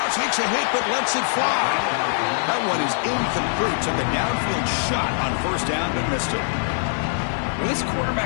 Takes a hit, but lets it fly. That one is incomplete. Took a downfield shot on first down, but missed it. Well, this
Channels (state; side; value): silent; right; 64 dB below the other